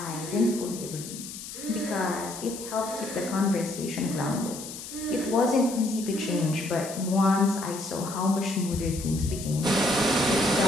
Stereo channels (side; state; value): left; noise; hiss, 11 dB below the sound